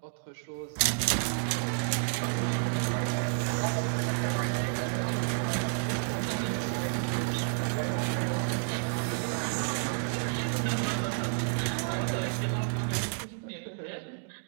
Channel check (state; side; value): silent; left; digital silence